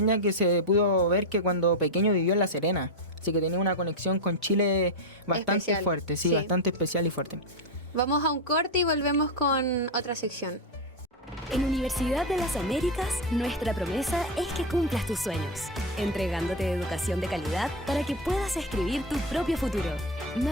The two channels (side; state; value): both; normal; correlation 0.10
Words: ya que se pudo ver que cuando pequeño vivió en La Serena, así que tenía una conexión con Chile bastante especial, fuerte, sí, bastante especial y fuerte. Vamos a un corte y volvemos con otra sección. En Universidad de las Américas, nuestra promesa es que cumplas tus sueños, entregándote educación de calidad para que puedas escribir tu propio futuro.